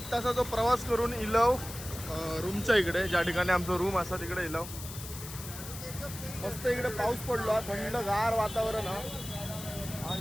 तासाचा प्रवास करून इलव रूमच्या इकडे ज्या ठिकाणी आमचं रूम असा तिकडे इलव. मस्त इकडे पाऊस पडलो थंडगार वातावरण.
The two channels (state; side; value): noise; left; hiss, 11 dB below the sound